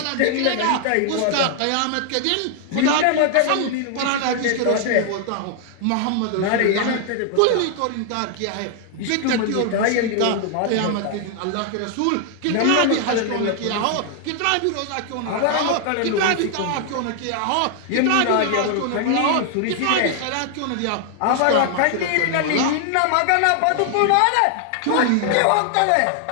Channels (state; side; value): different; both; correlation 0.00